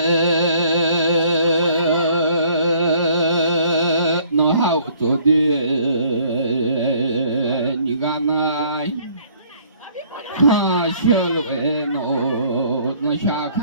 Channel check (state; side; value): inverted; both; correlation -0.59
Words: nó hao tôi đi như ga này ha xe lối nó xa